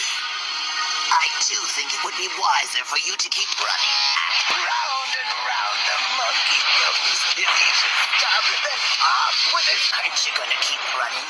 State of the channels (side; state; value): both; identical; correlation 1.00